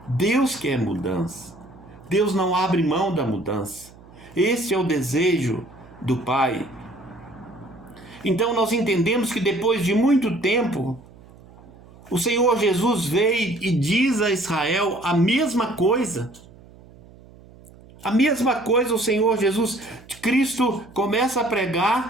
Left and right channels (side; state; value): right; noise; hum, 23 dB below the sound